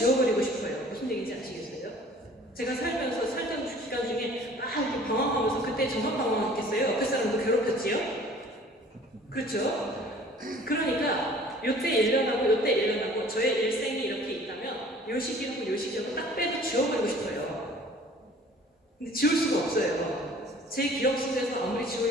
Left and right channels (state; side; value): normal; both; correlation 0.50